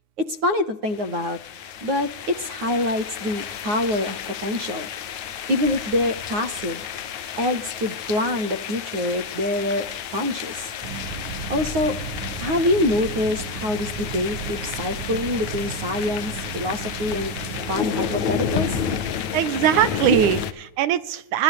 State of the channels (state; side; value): late; left; 9.6 ms